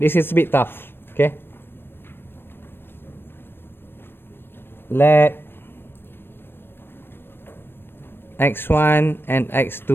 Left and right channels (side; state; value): right; late; 0.10 ms